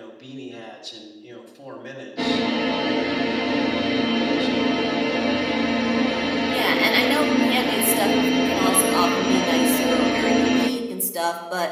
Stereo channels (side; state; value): both; identical; correlation 1.00